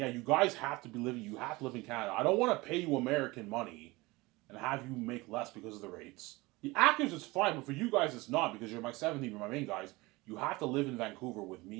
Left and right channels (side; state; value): left; quieter; 22.3 dB